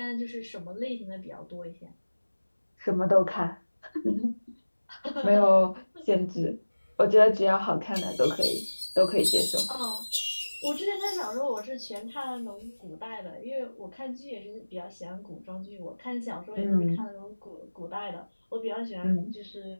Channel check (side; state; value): both; inverted; correlation -1.00